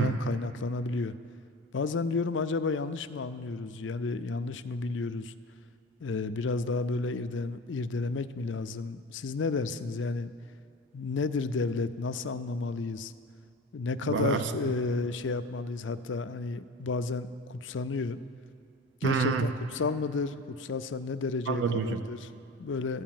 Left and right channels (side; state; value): both; normal; correlation 0.35